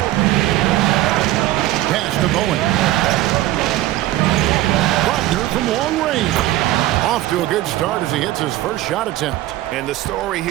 Pass to Bowen. Wagner from long range. Off to a good start as he hits his first shot attempt. And the story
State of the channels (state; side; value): quieter; left; 15.4 dB